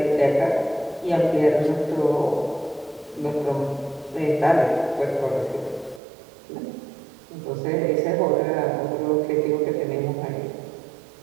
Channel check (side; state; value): left; drops out; at 6.0 s